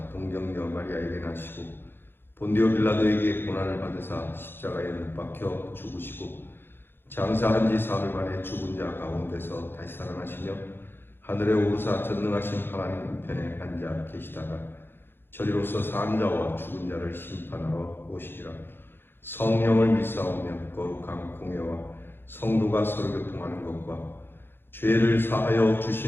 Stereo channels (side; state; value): right; late; 0.10 ms